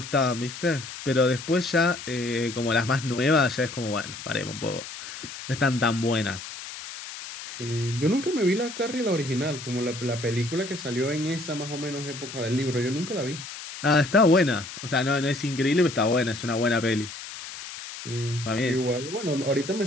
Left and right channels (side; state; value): left; noise; hiss, 11 dB below the sound